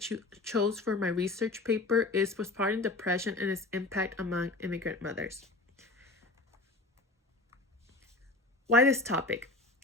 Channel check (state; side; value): quieter; right; 3.1 dB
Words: chose for my research paper is postpartum depression and its impact among immigrant mothers. Why this topic?